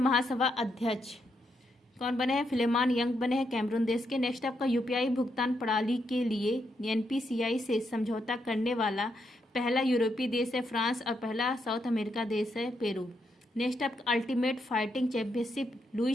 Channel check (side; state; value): both; normal; correlation 0.80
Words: अध्यक्ष कौन बने हैं? फिलेमान यंग बने हैं कैमरून देश के। नेक्स्ट आपका UPI भुगतान प्रणाली के लिए NPCI से समझौता करने वाला पहला यूरोपीय देश है फ्रांस और पहला साउथ अमेरिका देश है पेरू। नेक्स्ट आपका अल्टीमेट फाइटिंग चैंपियनशिप